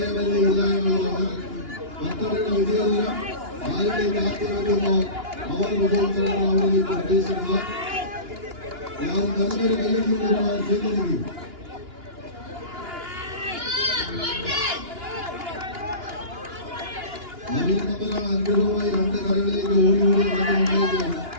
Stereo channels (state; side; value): late; left; 2.9 ms